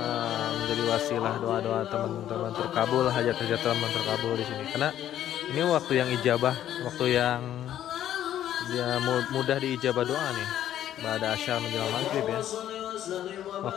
menjadi wasilah doa-doa teman-teman terkabul, hajat-hajat teman terkabul di sini. Karena Ini waktu yang ijabah, waktu yang mudah diijabah doa nih. Ba'da asyar menjelang maghrib ya.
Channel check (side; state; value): right; quieter; 11.5 dB